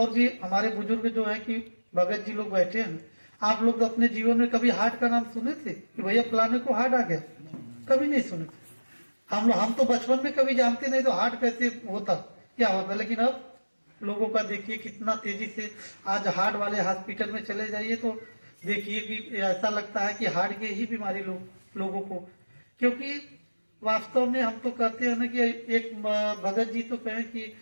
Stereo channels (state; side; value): inverted; both; correlation -1.00